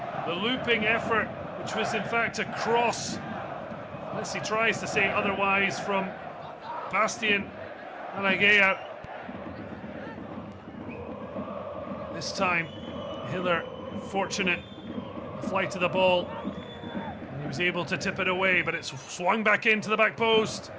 The looping effort, which was in fact a cross, unless he tries to say otherwise, from Bastian Alagea. This time, Hiller fortunate flight of the ball. He was able to tip it away, but it swung back into the back post.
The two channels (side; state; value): both; identical; correlation 1.00